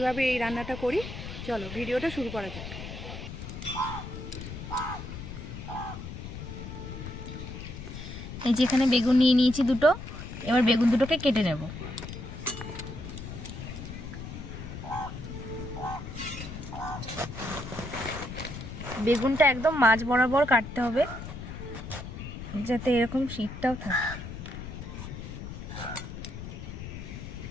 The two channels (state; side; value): noise; left; rumble, 9 dB below the sound